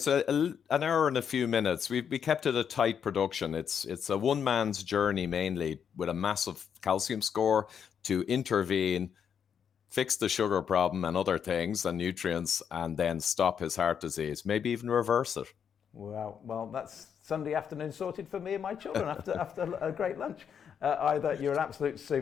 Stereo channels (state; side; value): quieter; right; 7.7 dB